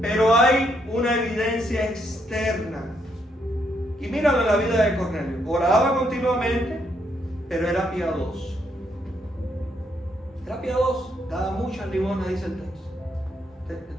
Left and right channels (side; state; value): both; normal; correlation 0.75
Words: hay una evidencia externa. Y míralo en la vida de Cornelio. Oraba continuamente, pero era piadoso. Era piadoso, daba muchas limosnas, dice el texto. El